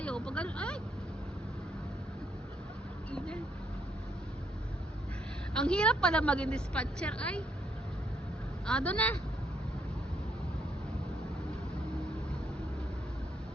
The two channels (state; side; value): normal; both; correlation 0.73